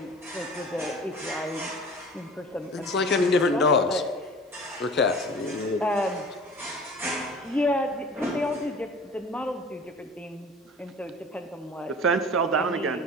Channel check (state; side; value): normal; both; correlation 0.42